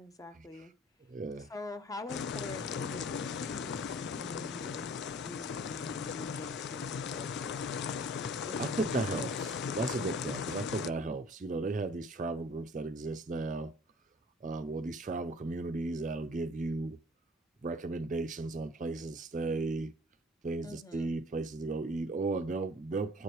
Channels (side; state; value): both; normal; correlation 0.51